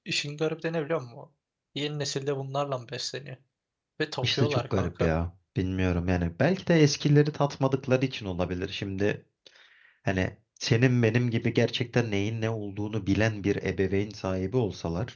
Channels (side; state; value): both; identical; correlation 1.00